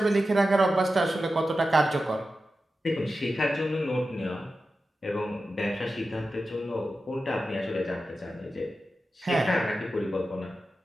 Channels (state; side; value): normal; both; correlation 0.92